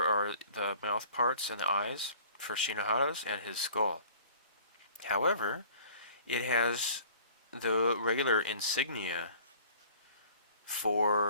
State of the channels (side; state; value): both; inverted; correlation -0.50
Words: are the mouth parts and the eyes for Shinohara's and his skull. However, it has the regular insignia